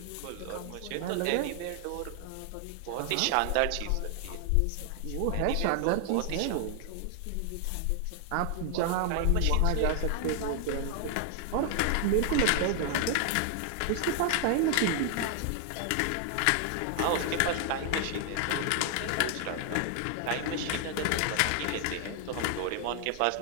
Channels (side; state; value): both; different; correlation 0.00